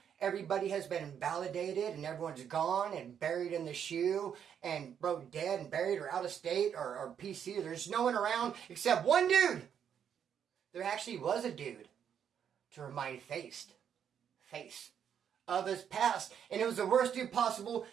everybody has been invalidated and everyone's gone and buried in the shoe and bro, dead and buried or out of state or PC. There's no one around except one dude. There actually was a dude to remind Face of his past. And it was the worst dude possible,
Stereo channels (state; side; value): quieter; left; 8.4 dB